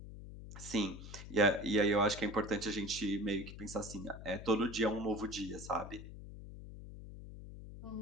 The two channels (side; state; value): left; noise; hum, 12 dB below the sound